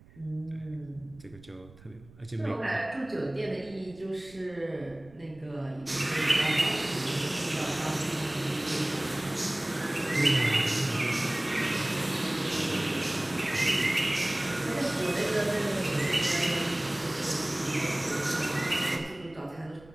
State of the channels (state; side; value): noise; right; rumble, 23 dB below the sound